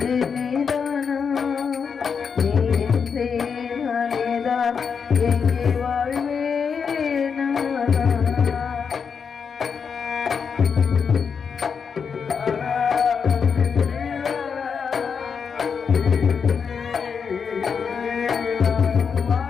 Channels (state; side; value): quieter; right; 6.2 dB